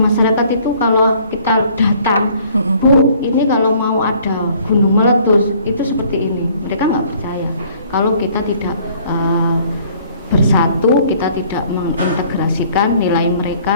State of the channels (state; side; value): inverted; both; correlation -0.58